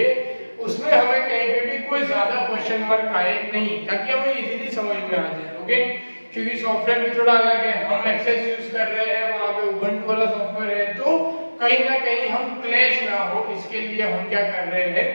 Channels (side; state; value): both; inverted; correlation -1.00